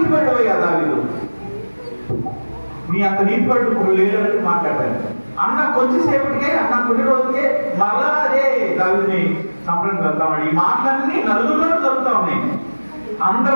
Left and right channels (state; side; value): inverted; both; correlation -1.00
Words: దావీదు, నీ అంత నీతిపడ్డు లేదని మాట్లాడతాడు. అన్న కొంచెంసేపటికే, అన్న కొన్ని రోజులకే మళ్ళా అదే దావీదుని చంపడానికి వెళ్తామని ఈ మాటలన్నీ నలుగురిలో జరుగుతూ ఉన్నాయి. అందరి